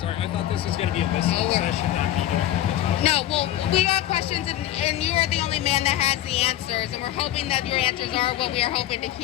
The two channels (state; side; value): quieter; right; 13.1 dB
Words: I thought this was going to be a listening session, not me doing No, well, we got questions, and you are the only man that has the answers, and we're hoping that your answers are what we are hoping to